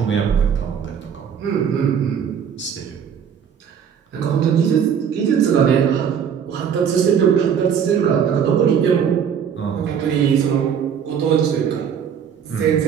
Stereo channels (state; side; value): quieter; left; 7.8 dB